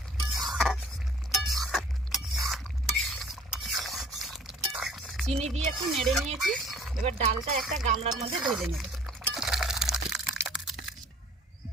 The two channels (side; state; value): both; normal; correlation 0.52